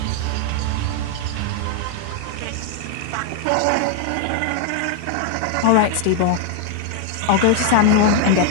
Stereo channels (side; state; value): both; different; correlation 0.00